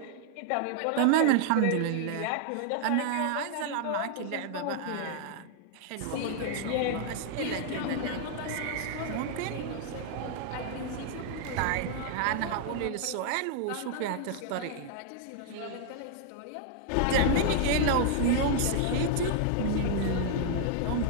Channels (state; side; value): different; both; correlation 0.00